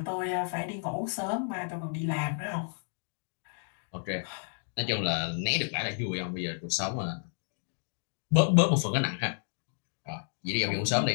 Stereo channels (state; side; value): silent; right; 57 dB below the other